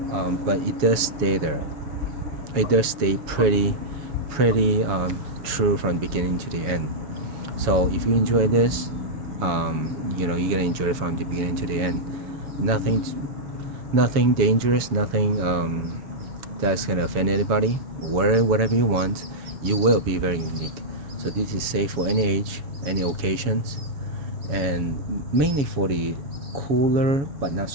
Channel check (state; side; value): late; left; 7.2 ms